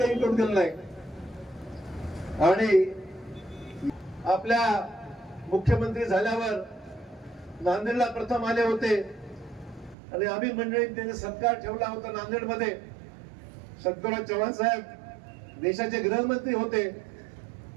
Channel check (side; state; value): left; drops out; at 10.0 s